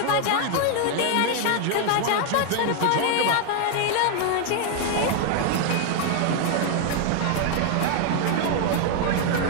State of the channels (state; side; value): different; both; correlation 0.00